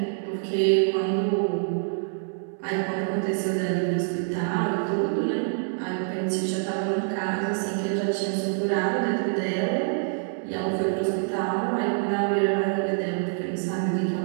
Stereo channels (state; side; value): silent; left; digital silence